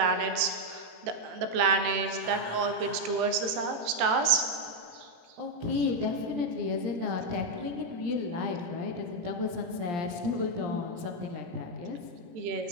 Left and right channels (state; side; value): late; left; 17 ms